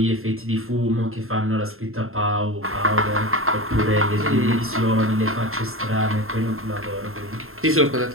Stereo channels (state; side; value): late; left; 0.61 ms